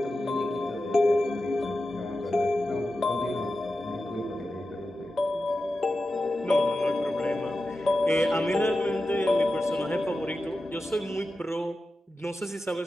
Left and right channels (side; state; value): both; normal; correlation 0.92